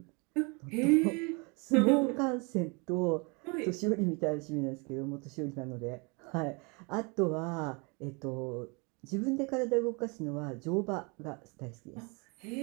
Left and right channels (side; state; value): left; quieter; 31.0 dB